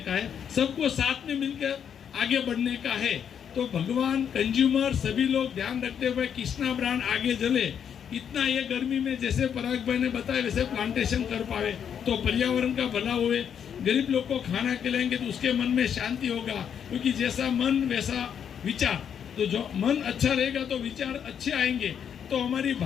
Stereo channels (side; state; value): right; quieter; 8.2 dB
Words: है, सबको साथ में मिलकर आगे बढ़ने का है। तो भगवान, कंज्यूमर, सभी लोग ध्यान रखते हुए कृष्णा ब्रांड आगे चले, इतना ये गर्मी में जैसे पराग भाई ने बताया वैसे प्लांटेशन कर पावे तो पर्यावरण का भला हुए, गरीब लोग को खाना खिलाएंगे तो उसके मन में शांति होगा, क्योंकि जैसा मन वैसा विचार, तो जो मन अच्छा रहेगा तो विचार अच्छे आएंगे, तो हमारी